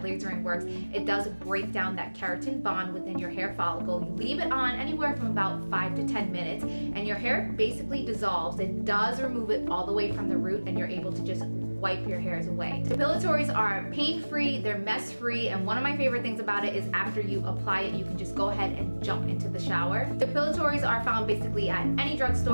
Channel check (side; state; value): both; inverted; correlation -1.00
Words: lasering works, it does break down that keratin bond within your hair follicle. You leave it on anywhere from about 5 to 10 minutes, and your hair basically dissolves. It does remove it all the way from the root, and you're able to just wipe your hairs away. Depilatories are pain-free, they're mess-free, and one of my favorite things about it is after you apply it, you can just go ahead and jump into the shower. Depilatories are found basically at any